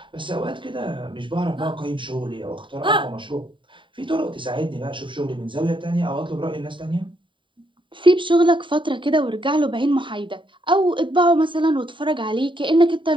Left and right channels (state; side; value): late; left; 0.24 ms